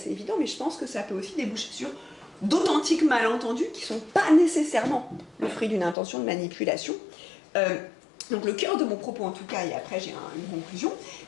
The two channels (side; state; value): right; drops out; at 6.0 s